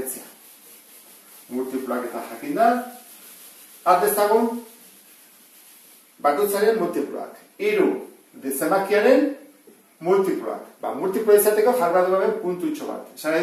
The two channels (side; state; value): both; identical; correlation 1.00